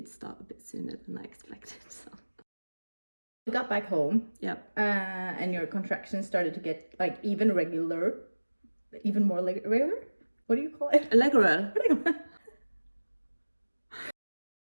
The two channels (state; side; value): inverted; both; correlation -1.00